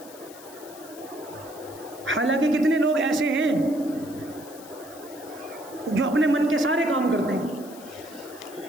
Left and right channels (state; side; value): noise; left; hiss, 19 dB below the sound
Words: حالانکہ کتنے لوگ ایسے ہیں جو اپنے من کے سارے کام کرتے ہیں،